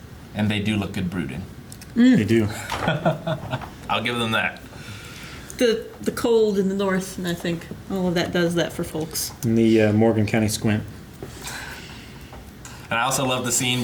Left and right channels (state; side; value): identical; both; correlation 1.00